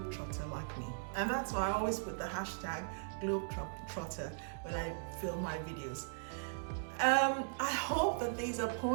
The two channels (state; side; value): silent; left; digital silence